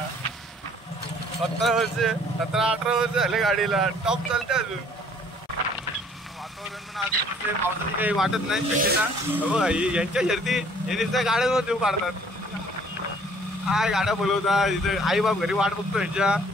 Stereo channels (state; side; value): normal; both; correlation 0.57